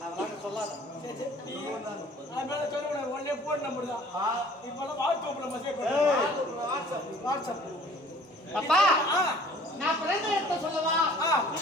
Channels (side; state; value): both; normal; correlation 0.52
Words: அதெல்லாம் சொல்லாத சரி சரி நீ அதனால சொல்லுங்க ஒண்ணே போன் நம்பர் தான் இப்பலாம் வாட்ஸ்அப்ல மெசேஜ் ஏய். வாட்ஸ்அப் அப்பா ஆ நான் பிறந்த இடத்தை சொல்லவா ஆ.